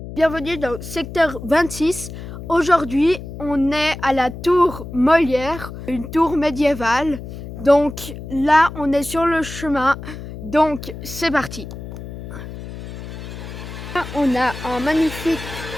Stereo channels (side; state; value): left; noise; hum, 11 dB below the sound